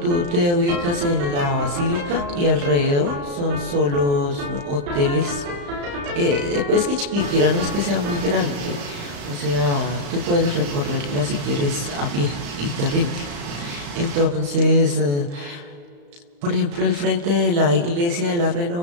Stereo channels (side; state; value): left; late; 35 ms